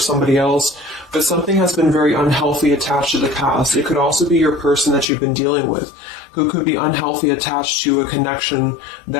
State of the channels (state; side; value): drops out; right; at 5.1 s